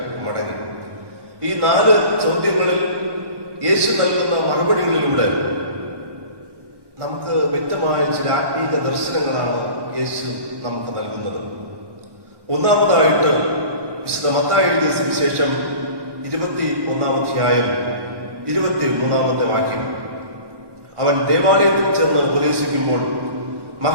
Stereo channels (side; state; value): left; late; 1.1 ms